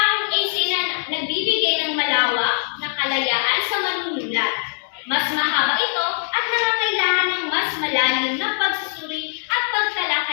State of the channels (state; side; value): silent; right; 65 dB below the other